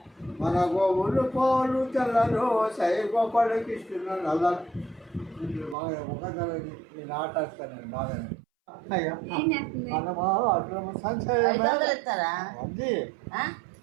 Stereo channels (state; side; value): drops out; left; at 5.8 s